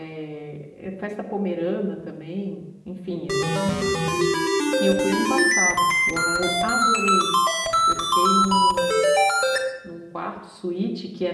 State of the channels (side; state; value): both; identical; correlation 1.00